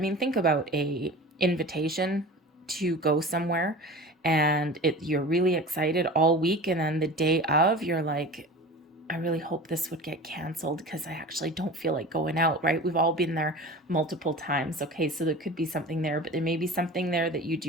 think about a invitation to go somewhere and you're really excited all week, and then the day of you're like, I really hope this would get canceled because I actually don't feel like going out, right? We've all been there multiple times. Okay, so there could be something there, but there may be something there that you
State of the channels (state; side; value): normal; both; correlation 0.36